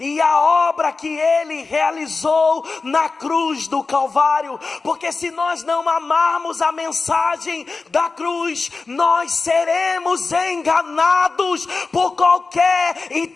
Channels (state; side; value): quieter; right; 4.1 dB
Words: a obra que Ele realizou na cruz do Calvário. Porque se nós não amarmos a mensagem da cruz, nós seremos enganados por qualquer